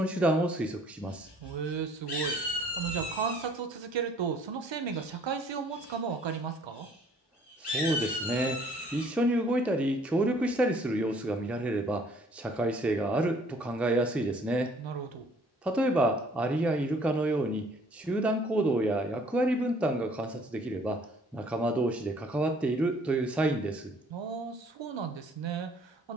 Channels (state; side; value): normal; both; correlation 0.58